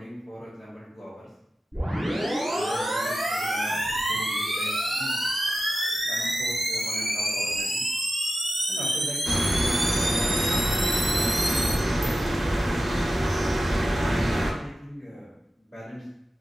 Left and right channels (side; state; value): both; normal; correlation 0.92